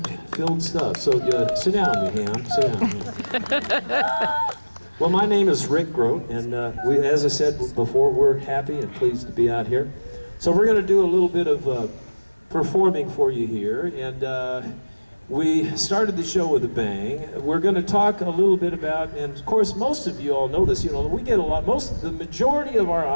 stuff. So sit down, you ham, sit down. Well, my name is Rick Groat, and as I said before, we're happy and pleased to be out here. So we're going to do a little bit of performing for you here, and we started the show with a bang. We're going to talk a little bit about, and of course, most of you all know this. You know, we get the majority of our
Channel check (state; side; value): inverted; both; correlation -1.00